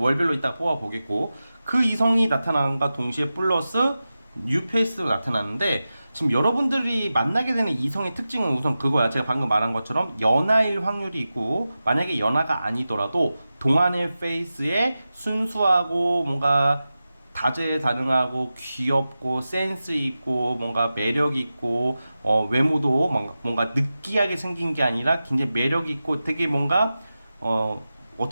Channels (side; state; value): both; inverted; correlation -0.94